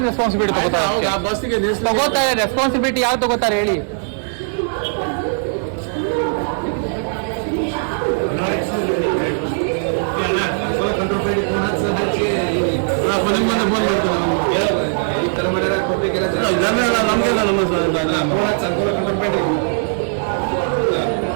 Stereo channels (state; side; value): silent; left; digital silence